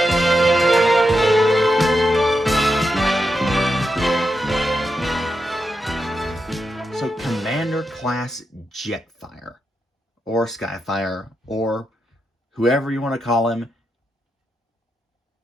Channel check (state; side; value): normal; both; correlation 0.86